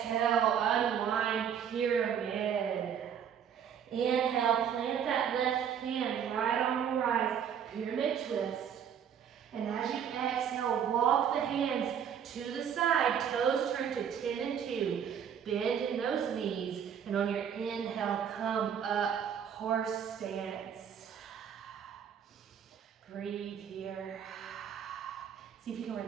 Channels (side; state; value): left; quieter; 8.3 dB